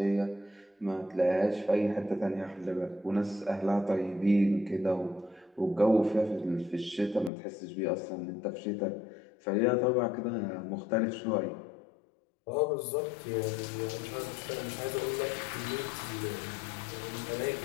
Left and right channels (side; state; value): right; drops out; at 7.3 s